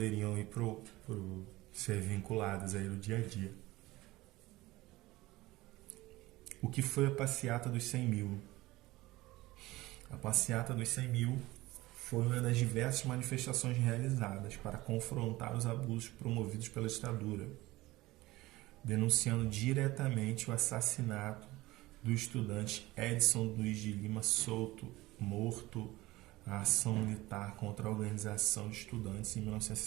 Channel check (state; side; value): quieter; left; 19.0 dB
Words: ir ser vinculadas aí no dia a dia. O que foi a passeata dos 100 mil? A passeata dos 100 mil foi uma das diversas manifestações realizadas para confrontar os abusos promovidos pela ditadura, denunciando diretamente o assassinato do estudante Edson Luiz de Lima Souto, morto na ação militar contra a Organização de Estudantes em